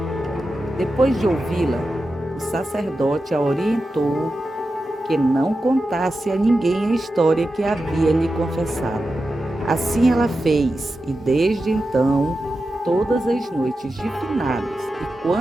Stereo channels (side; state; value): both; normal; correlation 0.91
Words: Depois de ouvi-la, o sacerdote a orientou que não contasse a ninguém a história que havia lhe confessado. Assim ela fez, e desde então, todas as noites de finados, e